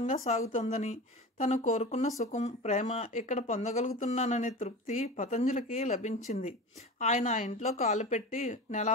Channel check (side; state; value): both; normal; correlation 0.31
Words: సాగుతుందని, తను కోరుకున్న సుఖం, ప్రేమ ఇక్కడ పొందగలుగుతున్నాననే తృప్తి పతంజలికి లభించింది. ఆయన ఆ ఇంట్లో కాలు పెట్టి